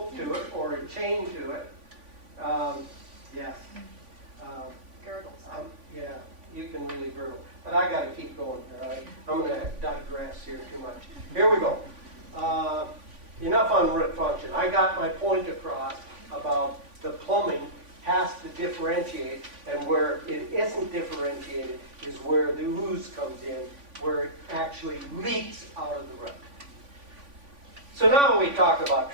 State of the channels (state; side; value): late; left; 3.5 ms